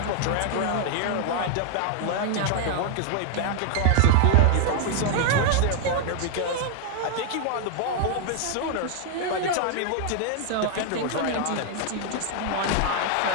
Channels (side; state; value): both; different; correlation 0.00